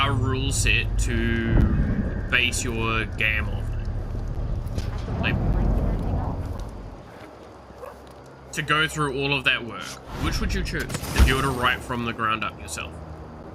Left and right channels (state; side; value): identical; both; correlation 1.00